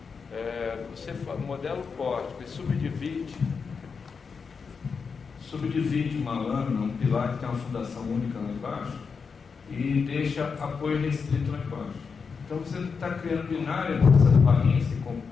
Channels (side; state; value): right; quieter; 5.5 dB